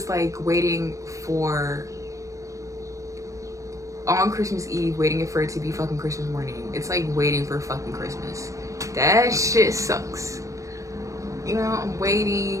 like waiting for on Christmas Eve, waiting for it to be fucking Christmas morning. It's like waiting for fucking Christmas. That shit sucks. You know, I'm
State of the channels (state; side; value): late; left; 0.15 ms